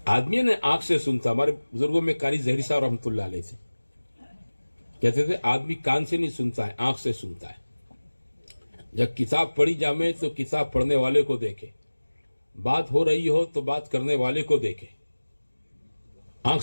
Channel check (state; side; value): inverted; both; correlation -1.00